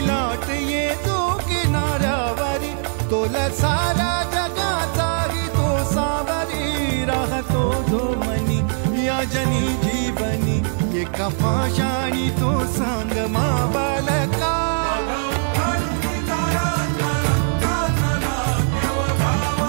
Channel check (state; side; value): silent; left; 57 dB below the other